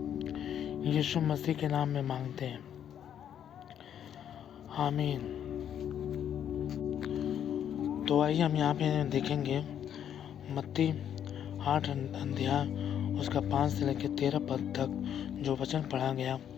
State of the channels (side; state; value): right; quieter; 9.5 dB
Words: यीशु मसीह के नाम में मांगते हैं, आमीन। तो आइए हम यहाँ पे देखेंगे मत्ती 8 अध्याय उसका 5 से लेकर 13 पद तक जो वचन पढ़ा गया,